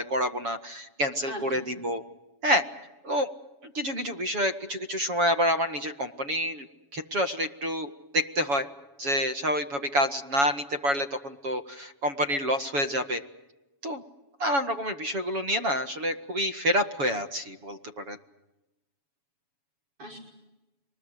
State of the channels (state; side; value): late; left; 7.1 ms